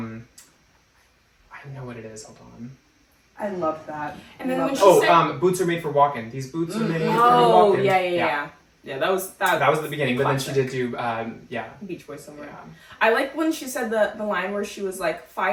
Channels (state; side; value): identical; both; correlation 1.00